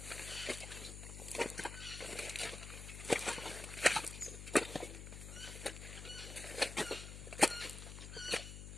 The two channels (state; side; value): noise; left; hum, 9 dB below the sound